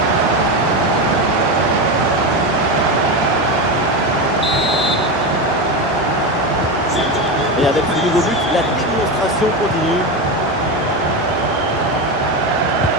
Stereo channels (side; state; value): both; normal; correlation 0.17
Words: Et avec ce nouveau but, la démonstration continue.